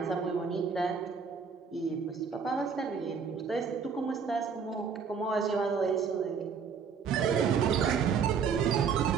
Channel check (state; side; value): quieter; left; 6.1 dB